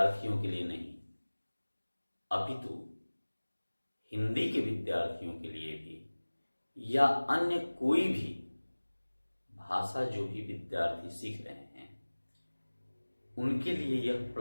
के लिए नहीं, अपितु हिंदी के विद्यार्थियों के लिए भी या अन्य कोई भी भाषा जो भी विद्यार्थी सीख रहे हैं उनके लिए यह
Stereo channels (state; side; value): inverted; both; correlation -1.00